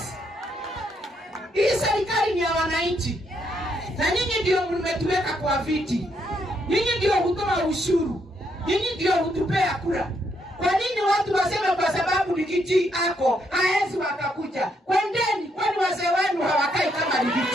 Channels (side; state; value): both; normal; correlation 0.75